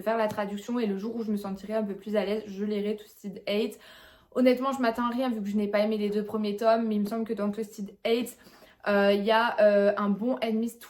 faire la traduction et le jour où je me sentirai un peu plus à l'aise je lirai Twisted Hate. Honnêtement je m'attends à rien vu que je n'ai pas aimé les 2 premiers tomes mais il me semble que dans Twisted Hate il y a un bon Enemies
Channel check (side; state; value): both; identical; correlation 1.00